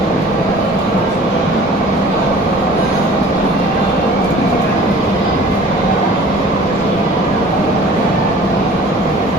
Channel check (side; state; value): both; normal; correlation 0.47